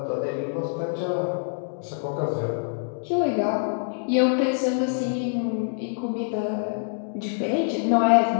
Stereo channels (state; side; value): silent; right; digital silence